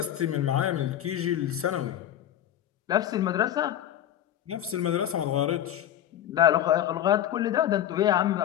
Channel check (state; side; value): quieter; right; 11.3 dB